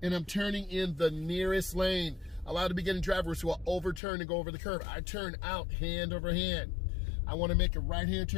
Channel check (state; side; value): drops out; right; at 4.0 s